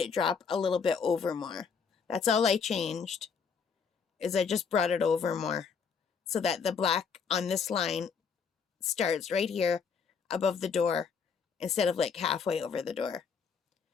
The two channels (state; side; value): quieter; right; 6.0 dB